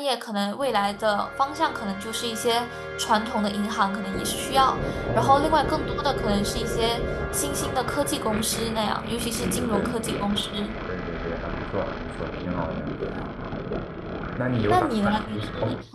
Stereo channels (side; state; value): both; identical; correlation 1.00